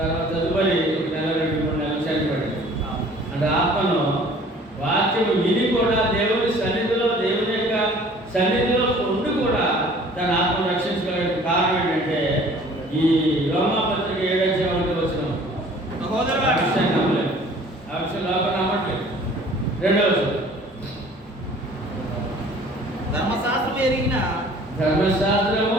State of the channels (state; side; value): normal; both; correlation 0.51